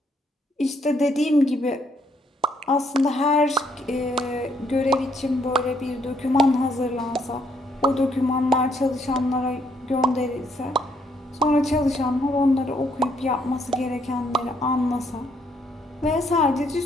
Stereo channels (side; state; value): both; normal; correlation 0.70